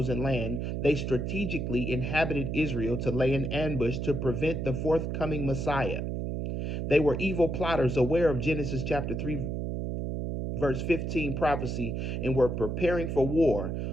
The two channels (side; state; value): right; noise; hum, 2 dB below the sound